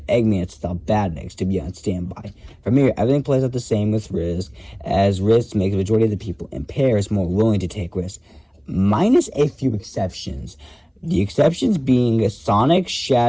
Eggman to stop Badniks to be on standby. From here, everything plays out the same with risk, as risk makes the majority of the people in Paris more willing to take risks, minus a few exceptions. The exceptions being Sonic,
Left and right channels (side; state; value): both; identical; correlation 1.00